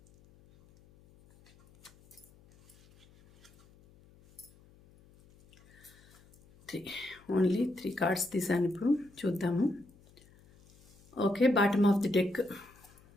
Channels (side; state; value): left; noise; hum, 27 dB below the sound